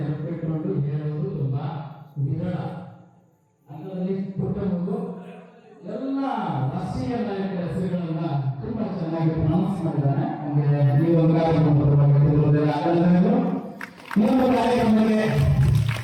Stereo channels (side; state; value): both; identical; correlation 1.00